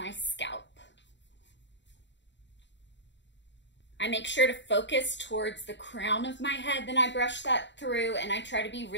scalp. I make sure to focus towards the crown of my head, then I brush that through, and I try to be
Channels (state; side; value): late; right; 0.52 ms